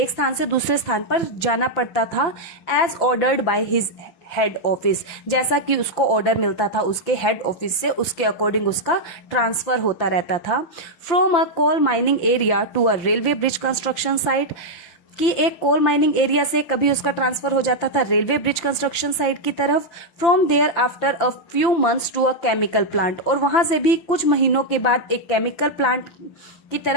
स्थान से दूसरे स्थान पर जाना पड़ता था. As ordered by his head office. जैसा कि उसको ऑर्डर मिलता था उसके हेड ऑफिस से, उसके अकॉर्डिंग उसका ट्रांसफर होता रहता था. From a coal mining area to a railway bridge construction site. कि एक कोल माइनिंग एरिया से कभी उसका ट्रांसफर हो जाता था रेलवे ब्रिज कंस्ट्रक्शन साइट की तरफ. From there after a few months to a chemical plant. और वहां से भी कुछ महीनों के बाद एक केमिकल प्लांट की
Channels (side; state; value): right; late; 5.9 ms